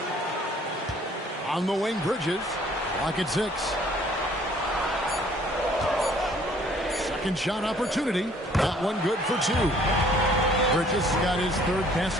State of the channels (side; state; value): both; normal; correlation 0.58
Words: On the wing, Bridges. Clock at 6. Second shot opportunity. That one good for 2. Bridges got his third